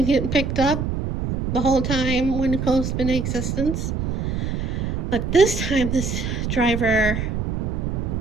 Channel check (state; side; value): noise; right; rumble, 2 dB below the sound